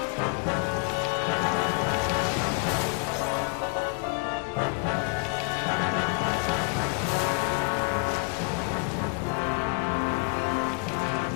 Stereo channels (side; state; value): right; quieter; 31.2 dB